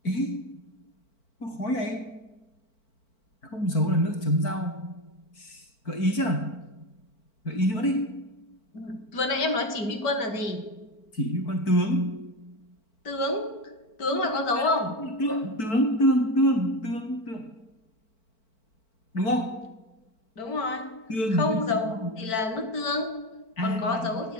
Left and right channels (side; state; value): right; late; 4.5 ms